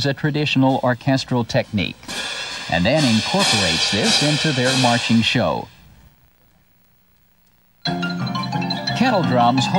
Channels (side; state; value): both; identical; correlation 1.00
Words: a traditional orchestral technique and then incorporates this into their marching show. Kettle drums